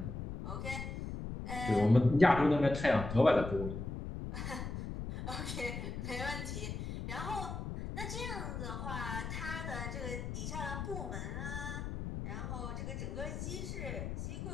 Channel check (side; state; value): left; noise; rumble, 5 dB below the sound